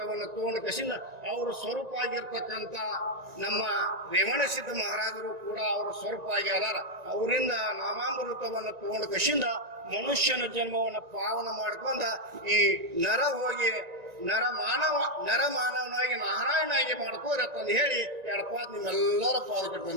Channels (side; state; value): left; late; 1.9 ms